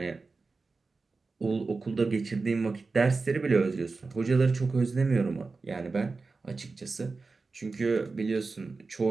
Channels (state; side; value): quieter; left; 4.0 dB